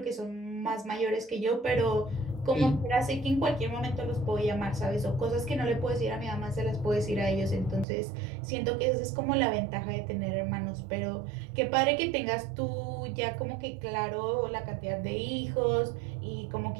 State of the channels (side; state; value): left; drops out; at 7.9 s